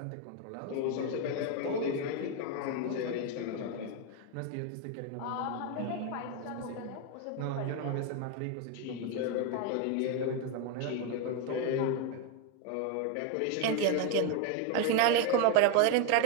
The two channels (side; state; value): both; different; correlation 0.01